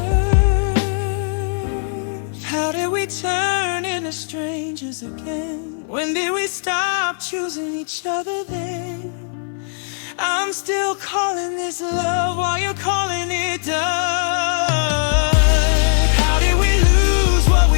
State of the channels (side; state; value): right; silent; 66 dB below the other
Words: How did we turn into strangers again? When did we stop choosing each other then? I'm still calling this love while you're calling it done. How did we lose what